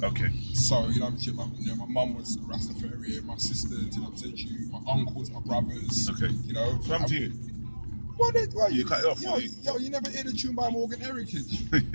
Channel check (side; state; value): both; inverted; correlation -1.00